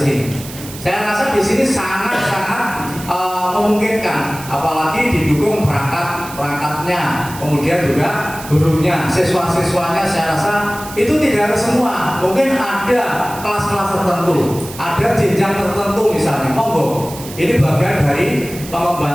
sini. Saya rasa di sini sangat-sangat memungkinkan, apalagi didukung perangkatnya, kemudian juga gurunya, siswa-siswanya. Saya rasa itu tidak harus semua, mungkin ada kelas-kelas tertentu, ada jenjang tertentu misalnya. Monggo. Ini bagian dari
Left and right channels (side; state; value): right; noise; hiss, 14 dB below the sound